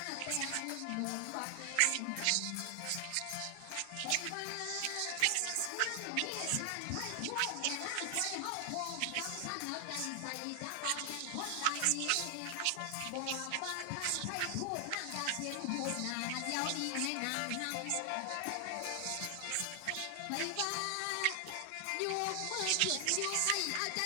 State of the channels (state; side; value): different; both; correlation 0.00